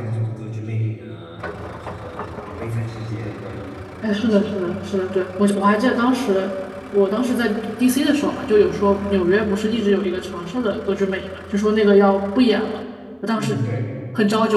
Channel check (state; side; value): identical; both; correlation 1.00